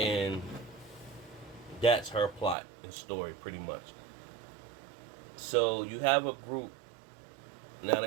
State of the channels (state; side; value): drops out; left; at 2.6 s